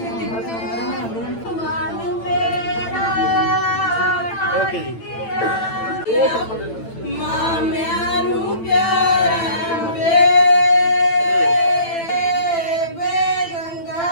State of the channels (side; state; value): right; late; 8.9 ms